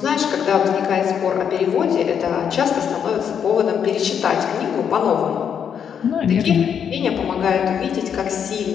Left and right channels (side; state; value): right; quieter; 7.9 dB